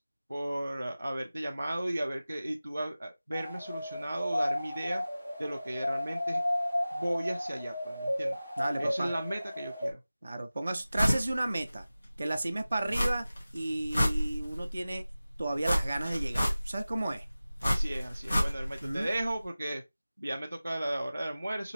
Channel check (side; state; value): both; inverted; correlation -0.97